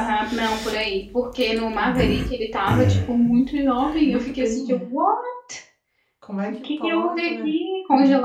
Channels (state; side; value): identical; both; correlation 1.00